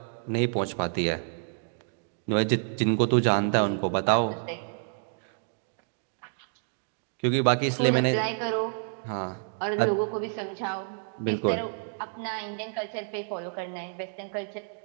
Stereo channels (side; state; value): left; silent; digital silence